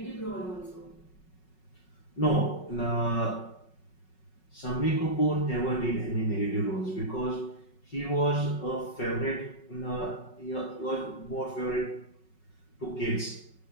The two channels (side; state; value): right; late; 5.4 ms